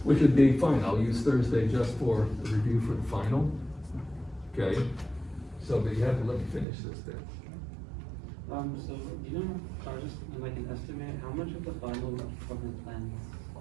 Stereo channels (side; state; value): left; drops out; at 6.7 s